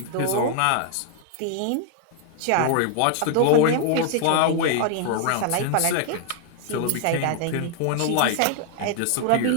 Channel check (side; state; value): both; different; correlation 0.00